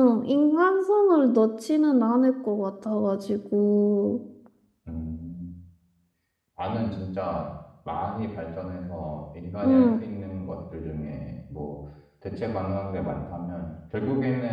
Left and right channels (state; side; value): identical; both; correlation 1.00